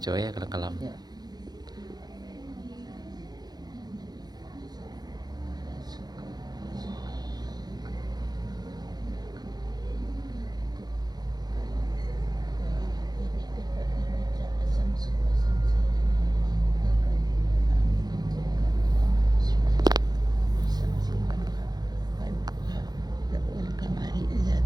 ya kalau kalam. Ya.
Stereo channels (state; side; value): late; left; 0.19 ms